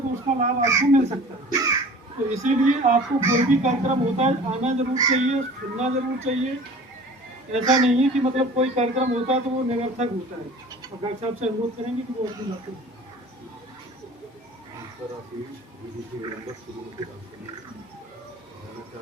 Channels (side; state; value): both; normal; correlation 0.43